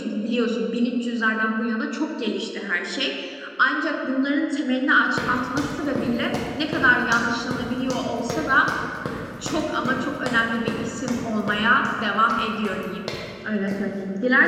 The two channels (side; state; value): both; identical; correlation 1.00